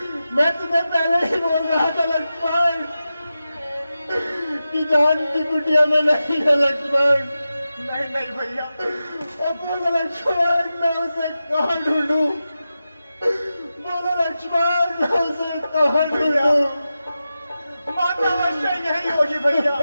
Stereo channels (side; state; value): both; inverted; correlation -0.92